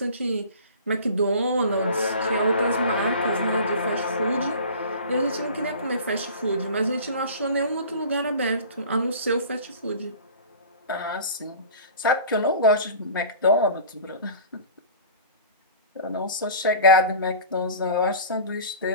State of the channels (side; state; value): both; inverted; correlation -0.41